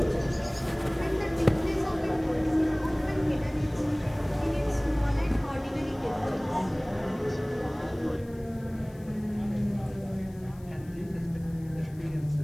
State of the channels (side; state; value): left; noise; hiss, 27 dB below the sound